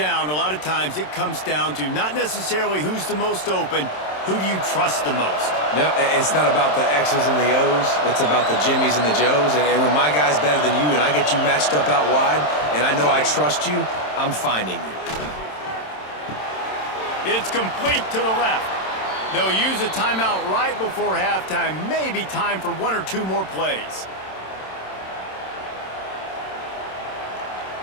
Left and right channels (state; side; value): late; right; 27 ms